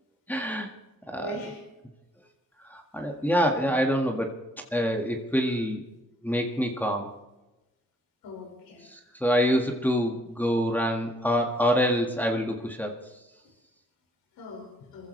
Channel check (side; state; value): both; normal; correlation 0.65